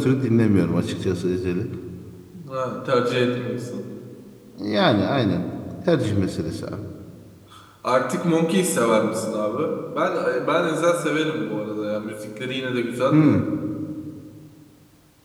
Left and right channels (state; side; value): identical; both; correlation 1.00